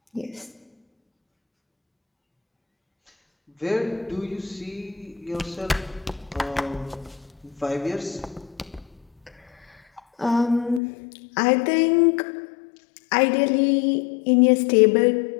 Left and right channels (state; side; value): drops out; right; at 10.8 s